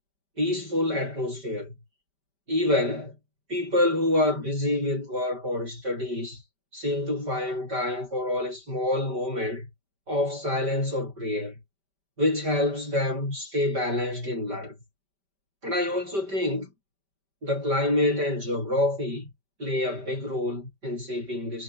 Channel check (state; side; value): late; left; 5.1 ms